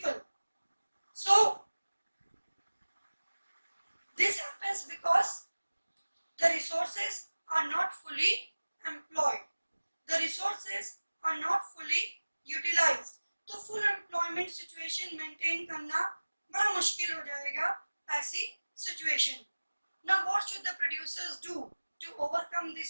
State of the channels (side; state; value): both; inverted; correlation -1.00